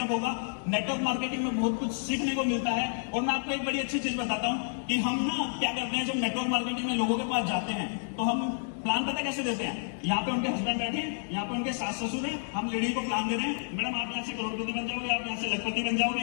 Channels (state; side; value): silent; right; digital silence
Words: होगा। नेटवर्क मार्केटिंग में बहुत कुछ सीखने को मिलता है। और मैं आपको एक बड़ी अच्छी चीज बताता हूँ कि हम ना क्या करते हैं, जब नेटवर्क मार्केटिंग में लोगों के पास जाते हैं तो हम प्लान पता कैसे देते हैं? यहाँ पे उनके हस्बैंड बैठे हैं, यहाँ पे उनके सास ससुर हैं, हम लेडी को प्लान दे रहे हैं, मैडम आप यहाँ से करोड़पति बन जाओगे, आप यहाँ से लखपति बन